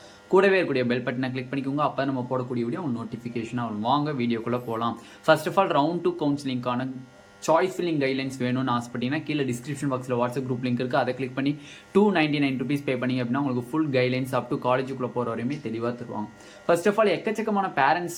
கூடவே இருக்கக்கூடிய பெல் பட்டனை கிளிக் பண்ணிக்கோங்க. அப்போ நம்ம போடக்கூடிய வீடியோ நோட்டிஃபிகேஷனாக வரும். வாங்க வீடியோக்குள்ளே போகலாம். ஃபர்ஸ்ட் ஆஃப் ஆல், ரவுண்ட் 2 கவுன்சிலிங்கான சாய்ஸ் ஃபில்லிங் கைட்லைன்ஸ் வேணும்னு ஆசைப்பட்டீங்கன்னா கீழே டிஸ்கிரிப்ஷன் பாக்ஸில் வாட்ஸ்அப் குரூப் லிங்க் இருக்குது. அதை கிளிக் பண்ணி 299 rupees பே பண்ணி அப்படின்னா உங்களுக்கு ஃபுல் கைட்லைன்ஸ் அப் டு காலேஜுக்குள்ளே போகிற வரையுமே தெளிவாக தருவாங்க. ஃபர்ஸ்ட் ஆஃப் ஆல், எக்கச்சக்கமான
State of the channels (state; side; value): identical; both; correlation 1.00